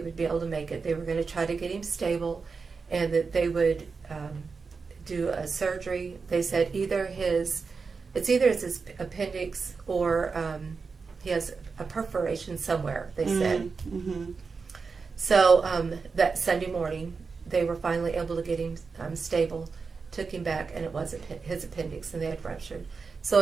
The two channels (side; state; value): left; quieter; 4.9 dB